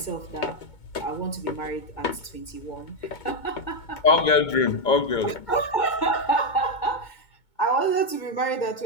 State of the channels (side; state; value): right; late; 2.2 ms